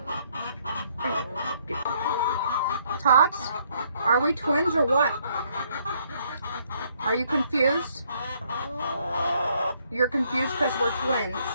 Tots, are we twins or what? Are you confused? You're confused because we're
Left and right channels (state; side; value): inverted; both; correlation -0.68